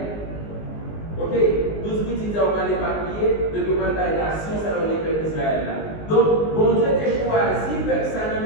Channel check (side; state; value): right; late; 19 ms